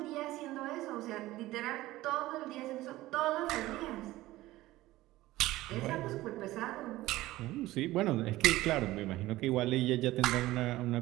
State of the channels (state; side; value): quieter; left; 17.1 dB